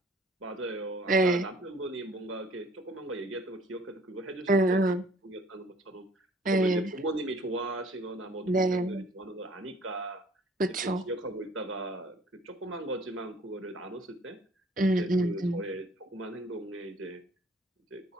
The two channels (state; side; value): normal; both; correlation 0.55